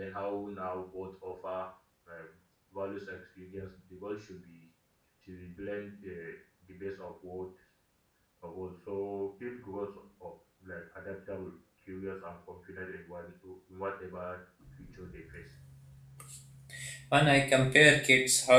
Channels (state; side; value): identical; both; correlation 1.00